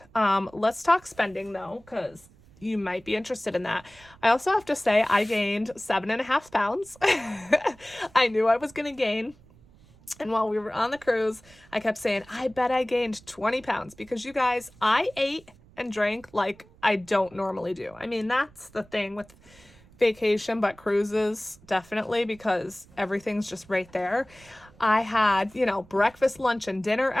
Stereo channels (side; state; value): right; noise; rumble, 26 dB below the sound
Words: Let's talk spending, though, because you might be interested in that. I also have to say I gained 7.5 pounds. I knew I was going to gain. And while we were on the cruise, I kept saying, I bet I gained 20 pounds, because you guys, I ate and drank like I don't normally do. I mean, that's the thing with vacation, but cruises definitely, because everything's just right there. I had, breakfast, lunch, and dinner